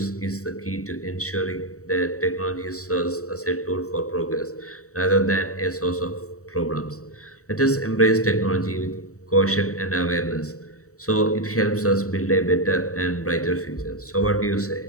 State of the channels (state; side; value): late; right; 0.65 ms